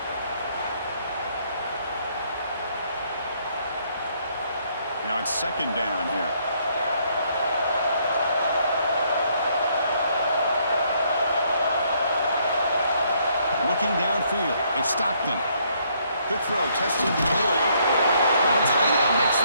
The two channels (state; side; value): inverted; both; correlation -0.69